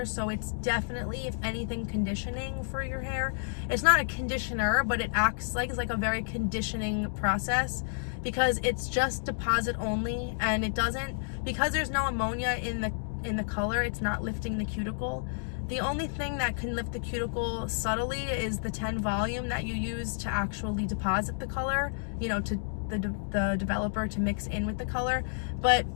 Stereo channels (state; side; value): silent; right; digital silence